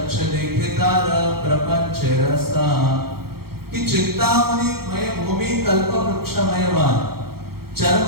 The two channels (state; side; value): late; left; 0.94 ms